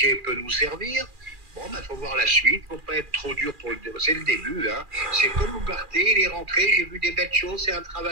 peut nous servir. Faut voir la suite, faut pas être trop dur c'est le début, C'est comme Ugarte, il est rentré, j'ai vu des belles choses, c'est un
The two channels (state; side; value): late; left; 2.4 ms